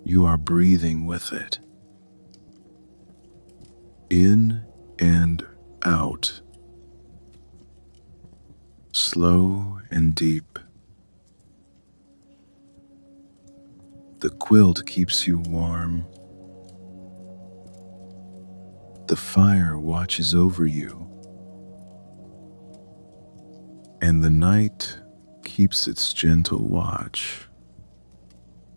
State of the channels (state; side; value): inverted; both; correlation -1.00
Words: You are breathing with it. In and out. Slow and deep. The quilt keeps you warm. The fire watches over you. And the night keeps its gentle watch.